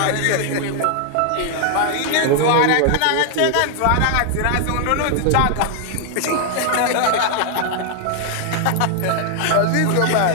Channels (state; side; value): different; both; correlation 0.00